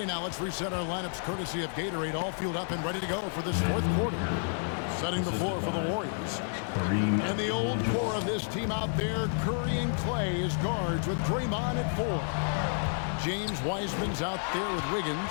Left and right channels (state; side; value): silent; right; digital silence